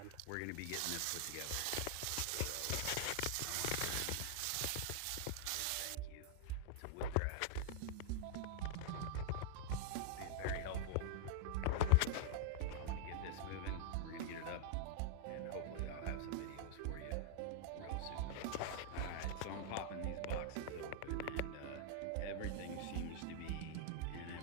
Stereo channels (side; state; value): both; different; correlation -0.01